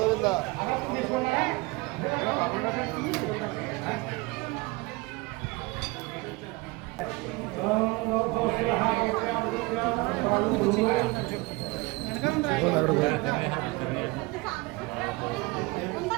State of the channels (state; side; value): quieter; left; 24.1 dB